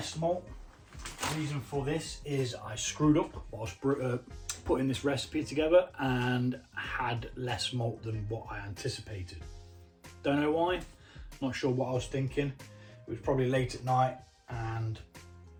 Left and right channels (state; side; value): identical; both; correlation 1.00